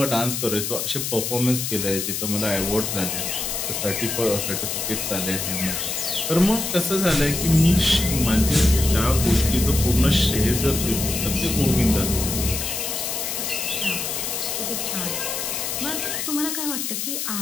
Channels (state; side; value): noise; left; hiss, 3 dB below the sound